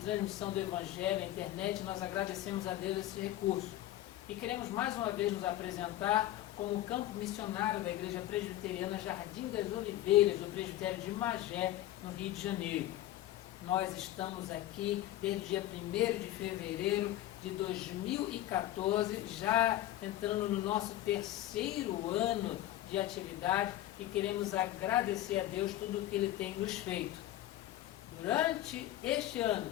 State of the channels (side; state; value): right; quieter; 14.1 dB